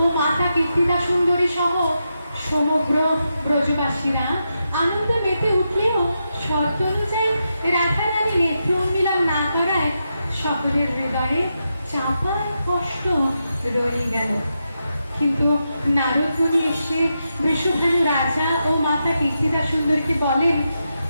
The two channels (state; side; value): inverted; both; correlation -0.86